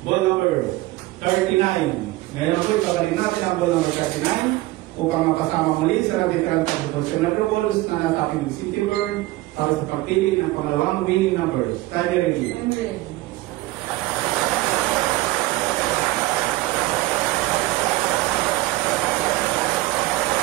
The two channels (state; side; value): quieter; left; 18.7 dB